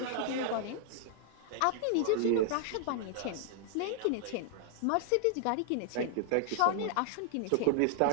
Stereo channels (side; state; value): both; different; correlation 0.00